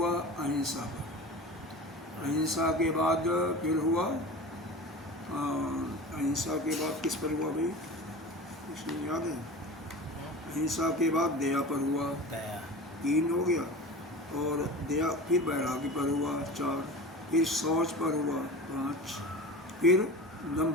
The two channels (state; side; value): normal; both; correlation 0.34